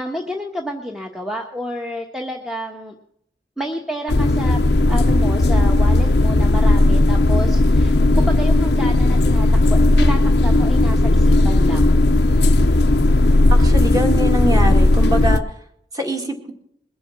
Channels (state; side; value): normal; both; correlation 0.88